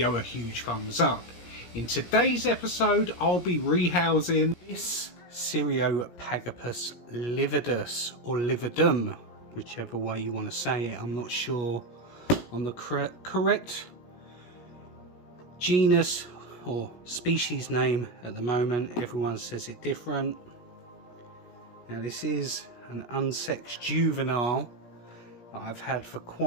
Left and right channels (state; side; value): late; right; 17 ms